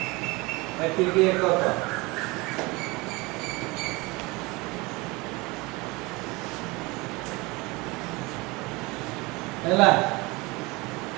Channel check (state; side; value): quieter; left; 24.1 dB